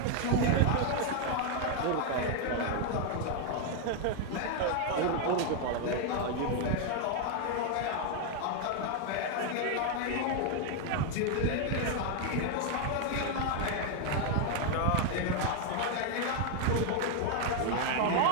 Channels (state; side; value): different; both; correlation 0.00